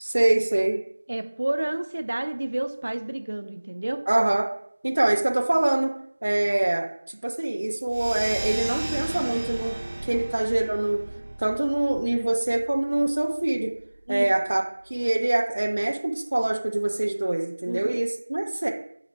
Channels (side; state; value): both; inverted; correlation -1.00